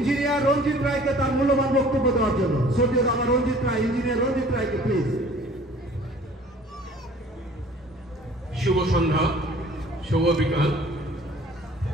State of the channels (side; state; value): both; normal; correlation 0.51